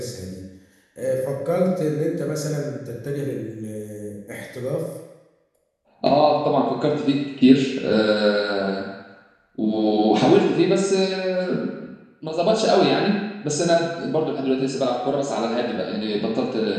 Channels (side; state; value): both; identical; correlation 1.00